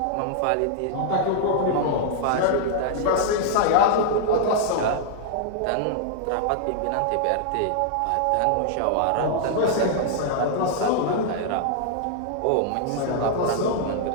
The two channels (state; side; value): different; both; correlation -0.01